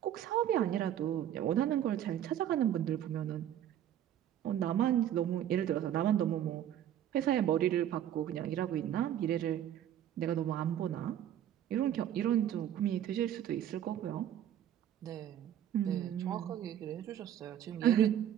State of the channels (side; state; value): left; quieter; 10.8 dB